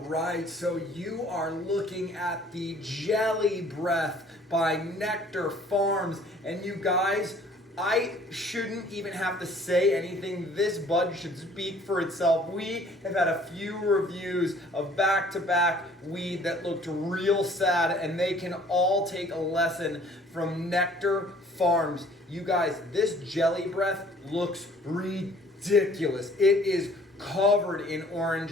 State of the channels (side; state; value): both; normal; correlation 0.55